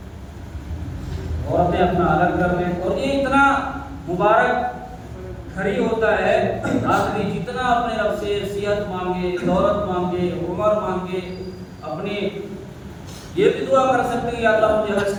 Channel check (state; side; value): identical; both; correlation 1.00